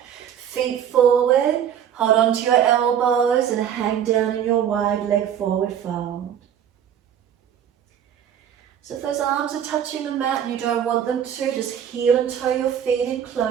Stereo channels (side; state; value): left; quieter; 9.2 dB